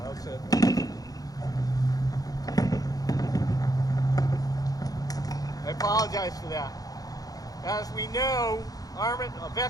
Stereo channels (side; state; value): right; late; 0.18 ms